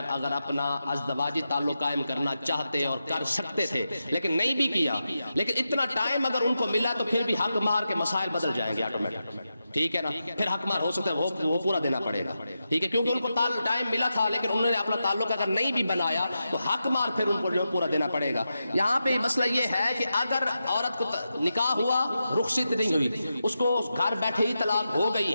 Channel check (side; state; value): both; inverted; correlation -0.89